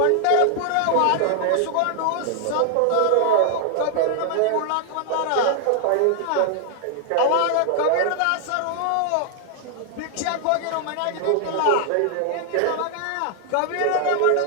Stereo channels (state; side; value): different; both; correlation 0.00